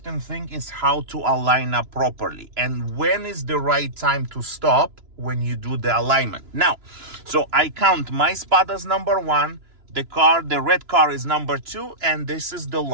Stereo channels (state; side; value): late; left; 2.9 ms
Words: thing is how to align up properly. And when is the right time to stop when you do the alignment. Now, so I count my spot as number 1, the red car is number 2, and this is the